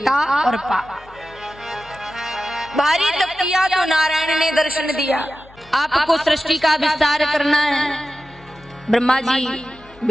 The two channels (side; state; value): left; noise; hum, 24 dB below the sound